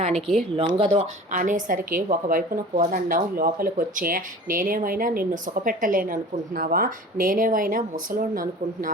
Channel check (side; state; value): both; normal; correlation 0.40